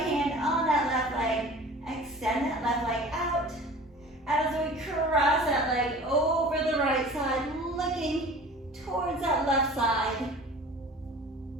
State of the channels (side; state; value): both; normal; correlation 0.42